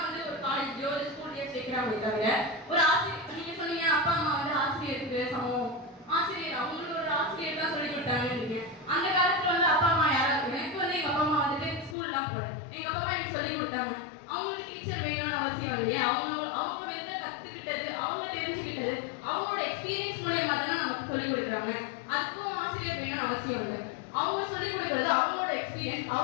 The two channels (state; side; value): drops out; right; at 12.0 s